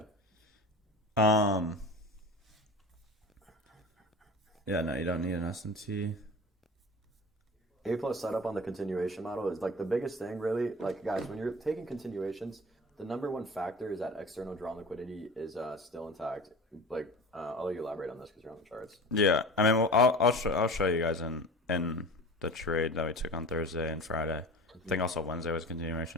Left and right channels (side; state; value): both; normal; correlation 0.36